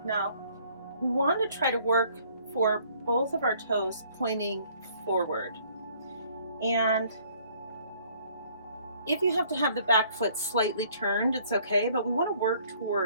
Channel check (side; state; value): both; inverted; correlation -0.60